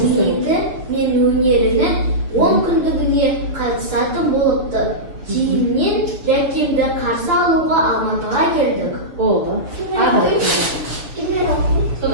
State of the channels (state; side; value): late; left; 6.6 ms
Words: мен өнерінің 10 күндігіне қатысатын болыпты. Кейіннен Жәкемді қарсы алуға Алматыға келдік. Болды.